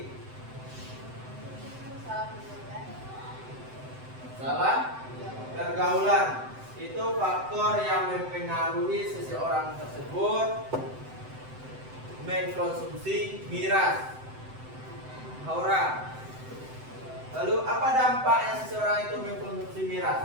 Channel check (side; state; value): left; late; 7.8 ms